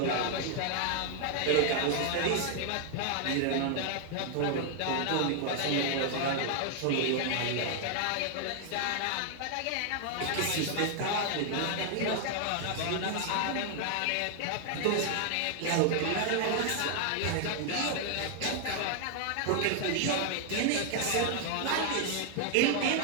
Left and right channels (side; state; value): both; different; correlation 0.00